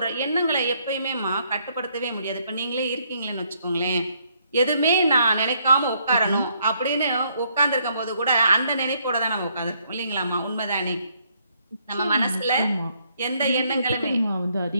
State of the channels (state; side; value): inverted; both; correlation -0.70